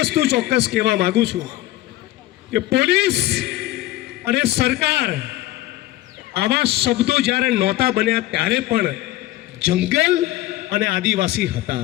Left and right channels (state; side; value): quieter; right; 16.3 dB